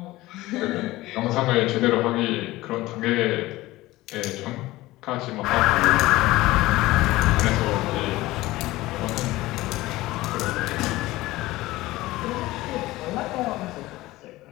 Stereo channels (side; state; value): right; quieter; 18.2 dB